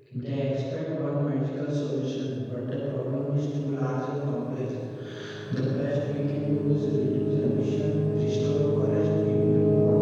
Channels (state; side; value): identical; both; correlation 1.00